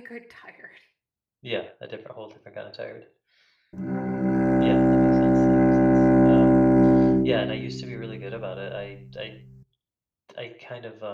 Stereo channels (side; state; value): both; identical; correlation 1.00